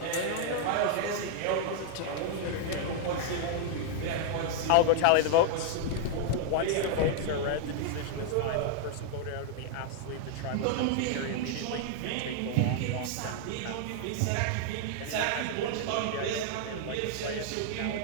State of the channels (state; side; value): different; both; correlation 0.00